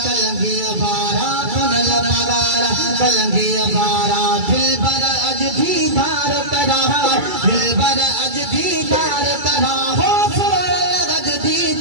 कलंगी बारा पुनल पगारा कलंगी बारा दिलबर अज दीदार करा दिलबर अज दीदार करा हो सोनल अज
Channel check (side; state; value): left; late; 2.3 ms